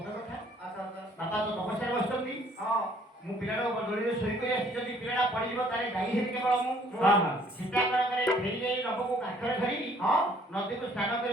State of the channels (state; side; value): normal; both; correlation 0.60